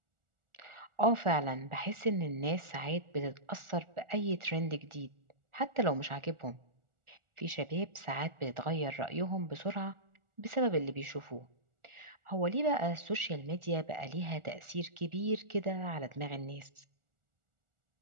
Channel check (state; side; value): late; left; 1.4 ms